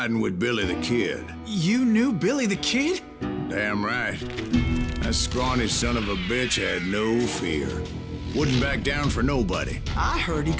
with Billy the Kid. You knew Billy the Kid? Damn right. That scrawny son of a bitch had no fear. Wouldn't back down for nobody. I heard he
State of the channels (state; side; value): identical; both; correlation 1.00